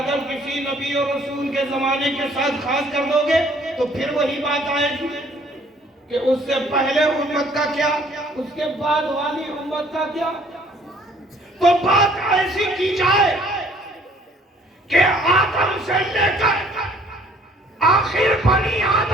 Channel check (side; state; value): both; normal; correlation 0.59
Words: کسی نبی اور رسول کے زمانے کے ساتھ خاص کر دو گے تو پھر وہی بات آئے گی کہ اس سے پہلے امت کا کیا، اس کے بعد والی امت کا کیا۔ تو بات ایسی کی جائے کہ آدم سے لے کر آخر بنی